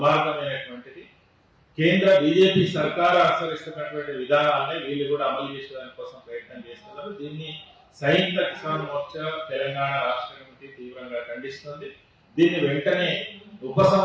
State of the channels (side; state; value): both; identical; correlation 1.00